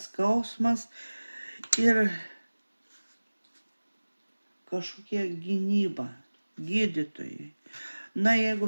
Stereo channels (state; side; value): inverted; both; correlation -1.00